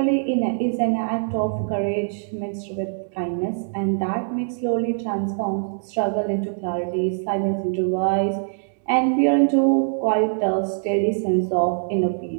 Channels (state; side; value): silent; left; digital silence